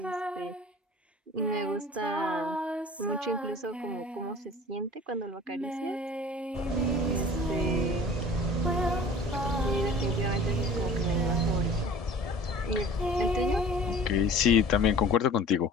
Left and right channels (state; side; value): normal; both; correlation 0.45